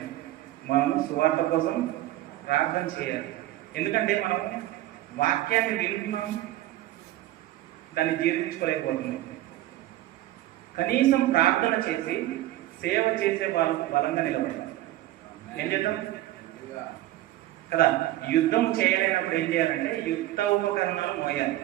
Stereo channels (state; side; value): quieter; left; 15.3 dB